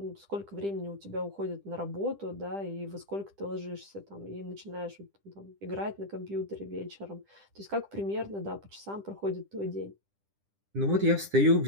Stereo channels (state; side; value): late; left; 10 ms